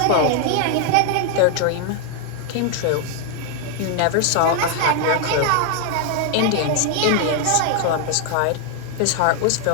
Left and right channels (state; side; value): different; both; correlation 0.00